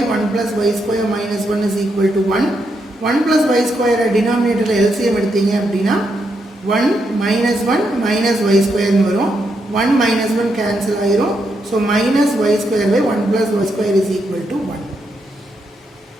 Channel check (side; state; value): both; normal; correlation 0.80